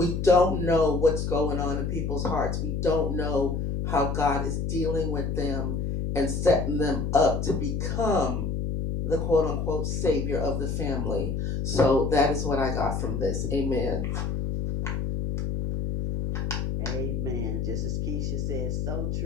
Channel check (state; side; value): noise; left; hum, 1 dB below the sound